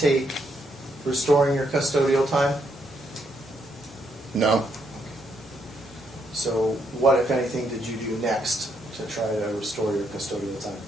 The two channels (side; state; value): both; normal; correlation 0.76